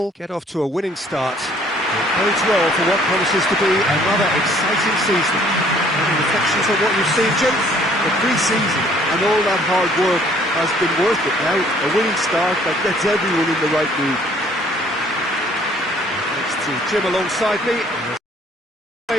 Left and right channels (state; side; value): normal; both; correlation 0.59